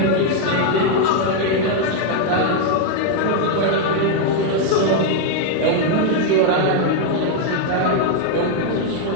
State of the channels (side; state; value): both; different; correlation 0.00